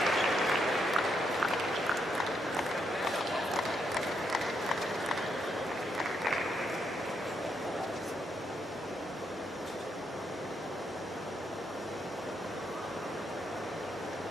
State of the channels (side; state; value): both; normal; correlation 0.78